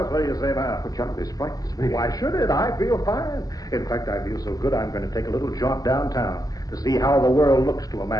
what do you say now? Well, John, this frightens me. Why should it? I feel fine. In fact, I feel so good I'm going to take a little jaunt downtown to see how the world looks to a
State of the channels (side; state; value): right; late; 0.17 ms